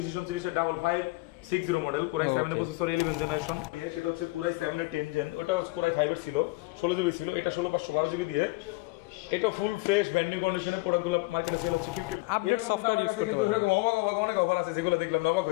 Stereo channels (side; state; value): right; quieter; 23.3 dB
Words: সিরিজের 5560 মডেল কোরাই 7 এর প্রসেসর 11 জেনারেশন, সেটা হচ্ছে কোরাই 7 এর 10 জেন, ওটা কোরাই 5 এর ছিল, 16 জিবি ছিল, এটা 16512 জিবি দিয়ে। এটা ফুল ফ্রেশ ব্র্যান্ড নিউ কন্ডিশনে প্রোডাক্টগুলো মার্কেটে সেল হচ্ছে 50। এরকম কিন্তু আমার কাছে কিন্তু এরকম অবাক অনেক অফার আছে যেগুলো দেখলাম অবাক